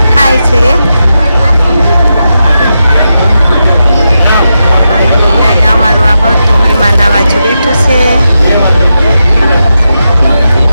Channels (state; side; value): inverted; both; correlation -0.87